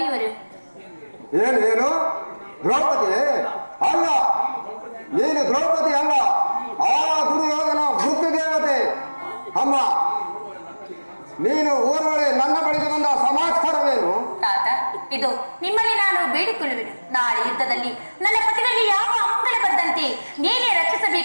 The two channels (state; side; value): inverted; both; correlation -1.00